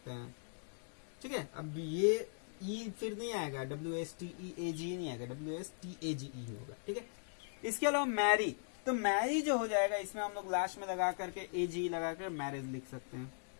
हैं। ठीक है, अब ये ई फिर नहीं आएगा, WSTEAG नहीं आएगा, WSTAGE होगा। ठीक है, इसके अलावा मैरी, तो मैरी जो हो जाएगा इसमें हम लोग लास्ट में लगा करके AG लगा कर मैरिज लिख सकते हैं।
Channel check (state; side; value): silent; right; digital silence